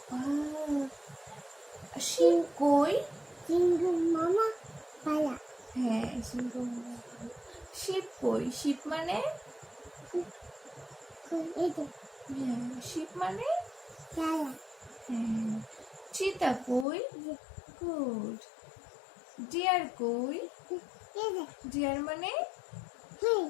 শিপ কই? সিংহ মামা পালা। হ্যাঁ সিংহ মামা। শিপ কই? শিপ মানে হ্যাঁ শিপ মানে পালা। হ্যাঁ। চিতা কই? গুড। ডিয়ার কই? ডিয়ার মানে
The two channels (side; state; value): right; drops out; at 16.9 s